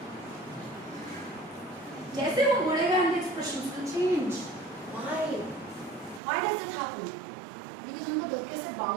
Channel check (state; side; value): drops out; left; at 6.2 s